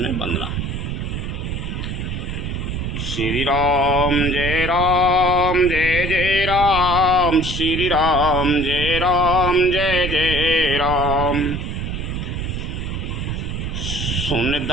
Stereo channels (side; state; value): right; noise; rumble, 4 dB below the sound